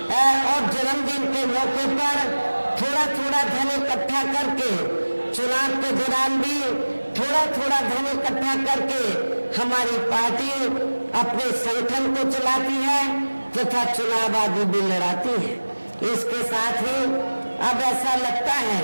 और जन्मदिन के मौके पर थोड़ा थोड़ा धन इकट्ठा करके चुनाव के दौरान भी थोड़ा थोड़ा धन इकट्ठा करके हमारी पार्टी अपने संगठन को चलाती है तथा चुनाव आदि भी लड़ाती है। इसके साथ ही अब ऐसा लगता है,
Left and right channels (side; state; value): both; inverted; correlation -1.00